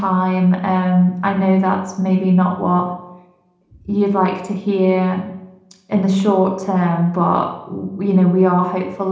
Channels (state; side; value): identical; both; correlation 1.00